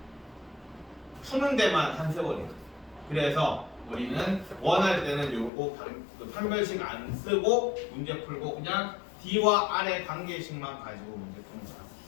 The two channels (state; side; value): drops out; right; at 5.5 s